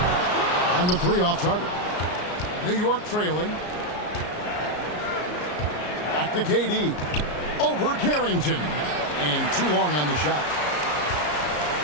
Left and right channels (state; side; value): late; right; 33 ms